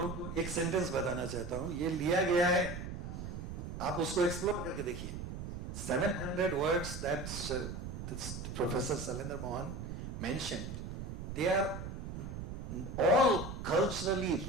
को एक सेंटेंस बताना चाहता हूँ. ये लिया गया है आप उसको एक्सप्लोर करके देखिए. 700 words that this Professor Salendra Mohan mentioned, they are all culturally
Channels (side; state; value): right; noise; rumble, 7 dB below the sound